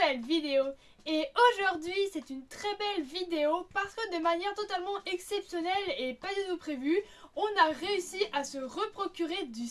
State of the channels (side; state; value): both; identical; correlation 1.00